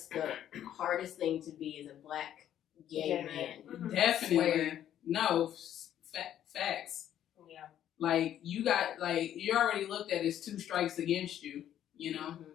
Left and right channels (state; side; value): quieter; right; 10.9 dB